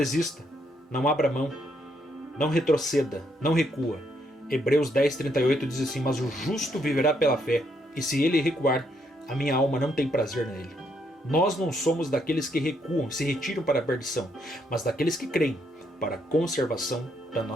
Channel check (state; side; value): normal; both; correlation 0.74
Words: não abra mão, não retroceda, não recua. Hebreus 10:38 diz assim: mas o justo viverá pela fé, e se ele recuar, a minha alma não tem prazer nele. Nós não somos daqueles que recuam, se retiram para a perdição, mas daqueles que creem para a conservação da